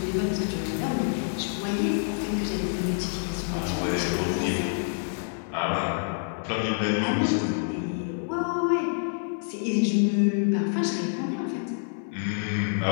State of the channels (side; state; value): right; silent; digital silence